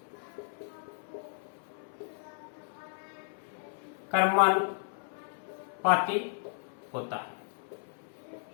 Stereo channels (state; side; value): silent; right; 55 dB below the other